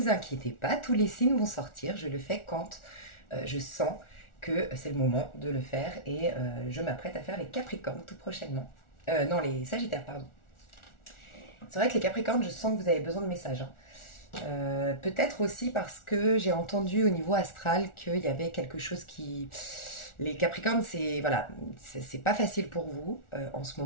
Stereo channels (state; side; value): late; right; 1.4 ms